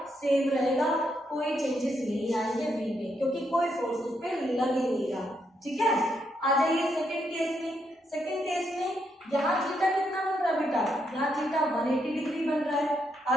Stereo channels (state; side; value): normal; both; correlation 0.78